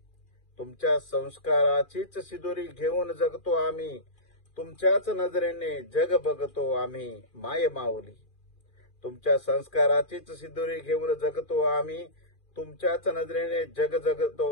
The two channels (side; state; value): right; late; 2.4 ms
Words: सिदोरी घेऊन जगतो आम्ही. तुमच्याच नजरेने जग बघतो आम्ही माय माऊली. तुमच्या संस्काराचीच सिदोरी घेऊन जगतो आम्ही. तुमच्याच नजरेने जग